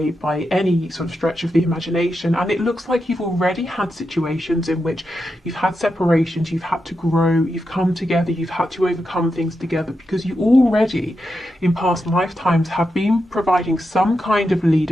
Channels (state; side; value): normal; both; correlation 0.87